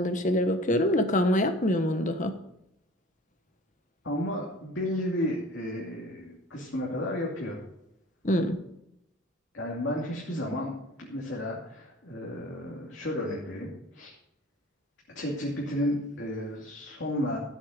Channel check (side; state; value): both; normal; correlation 0.45